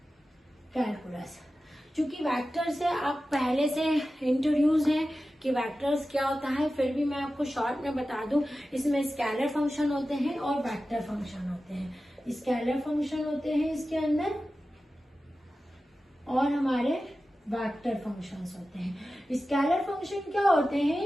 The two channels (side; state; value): both; normal; correlation 0.94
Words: कैलकुलस, चूंकि वेक्टर से आप पहले से इंट्रोड्यूस हैं कि वेक्टर्स क्या होता है, फिर भी मैं आपको शॉर्ट में बता दूं। इसमें स्केलर फंक्शन होते हैं और वेक्टर फंक्शन होते हैं। स्केलर फंक्शन होते हैं इसके अंदर और हमारे वेक्टर फंक्शंस होते हैं। स्केलर फंक्शन क्या होते